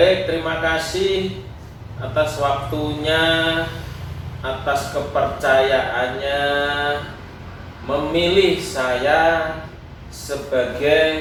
terima kasih atas waktunya, atas kepercayaannya memilih saya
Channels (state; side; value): identical; both; correlation 1.00